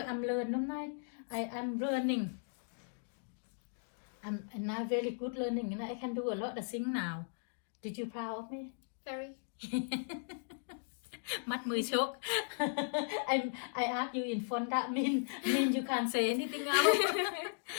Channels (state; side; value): silent; right; digital silence